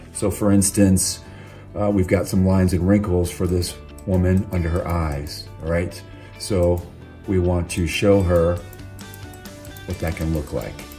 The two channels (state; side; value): identical; both; correlation 1.00